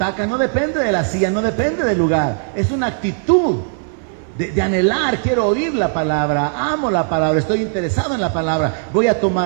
no depende de la silla, no depende del lugar. Es una actitud de anhelar, quiero oír la palabra, amo la palabra, estoy interesado en la palabra, voy a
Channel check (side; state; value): left; silent; digital silence